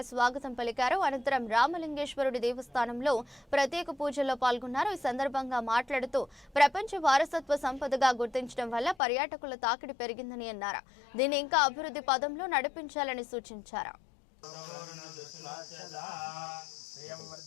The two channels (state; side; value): drops out; right; at 9.0 s